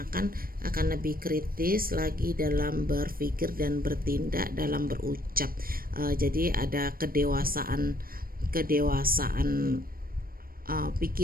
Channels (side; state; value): left; late; 0.42 ms